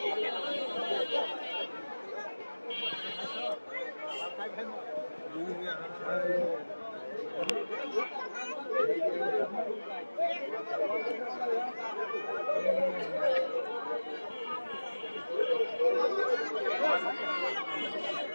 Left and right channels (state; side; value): inverted; both; correlation -1.00